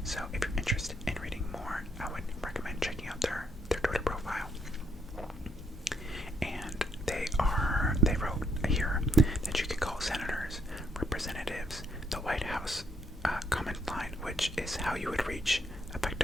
So if you're interested in reading more, I would recommend checking out their Twitter profile. And they wrote here that you can call senators, representatives, the White House comment line, which is how you would reach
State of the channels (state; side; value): normal; both; correlation 0.74